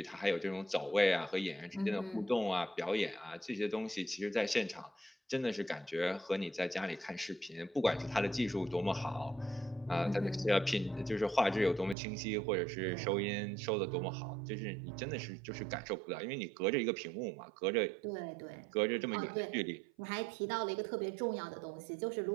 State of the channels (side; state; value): left; drops out; at 12.0 s